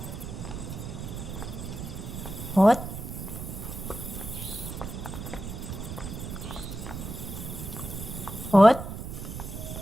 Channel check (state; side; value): noise; right; rumble, 7 dB below the sound